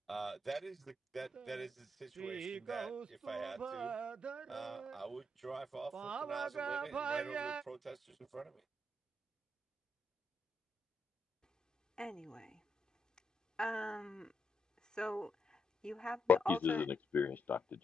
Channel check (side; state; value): both; normal; correlation 0.80